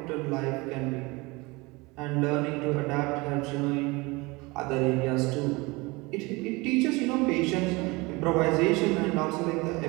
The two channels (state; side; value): quieter; left; 24.4 dB